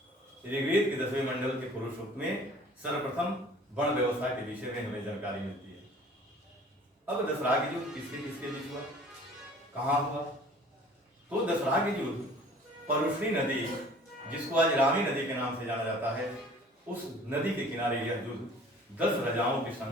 ऋग्वेद के 10वें मंडल के पुरुष सूक्त में सर्वप्रथम वर्ण व्यवस्था के विषय में हमें जानकारी मिलती है। अब दशराग युद्ध किसके किसके बीच हुआ, कहाँ हुआ? तो दशराग युद्ध परुष्णी नदी, जिसको आज रावी नदी के नाम से जाना जाता है, उस नदी के किनारे यह युद्ध 10 राजाओं के संग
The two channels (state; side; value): normal; both; correlation 0.49